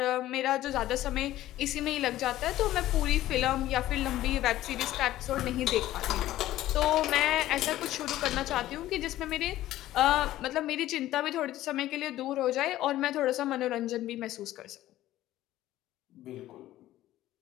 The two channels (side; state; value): right; quieter; 14.6 dB